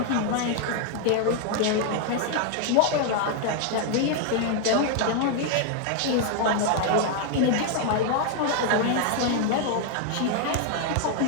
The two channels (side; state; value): both; different; correlation 0.00